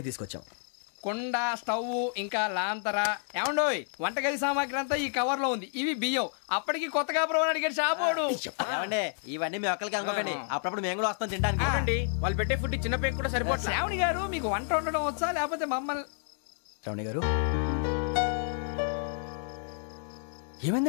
తీసుకొచ్చాం. కుండ, స్టవ్, ఇంకా లాంతర. ఏమండోయ్, వంటగది సామాగ్రి అంతా ఈ కవర్ లో ఉంది. ఇవి బియ్యం. అప్పటికి కొత్తగా బ్రౌన్ అడిగాడు షాపోడు. ఏమండి, ఇవన్నీ మీ ఒక్కరికి అనుకోకండి, అప్పుడప్పుడు మేము కూడా వస్తాం తింటానికి. చూడండి, వాళ్ళు పెట్టే ఫుడ్ చిన్న పేక్ కూడా సరిపోతుంది. శ్రావణి గారు, మీకు వంట వండడం వచ్చా, లేకపోతే మమ్మల్ని? శ్రావణి గారు,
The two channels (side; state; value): right; silent; digital silence